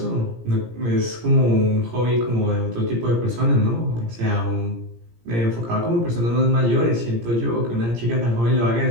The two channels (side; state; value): left; late; 17 ms